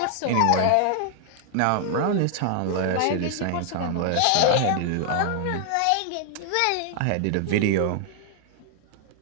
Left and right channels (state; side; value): different; both; correlation 0.00